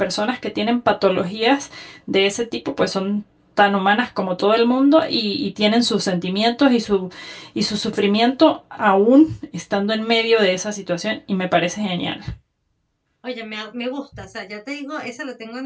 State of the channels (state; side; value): identical; both; correlation 1.00